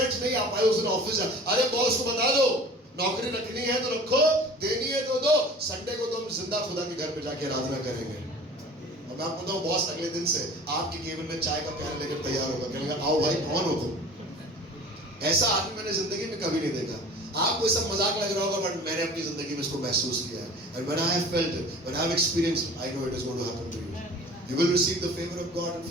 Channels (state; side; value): normal; both; correlation 0.43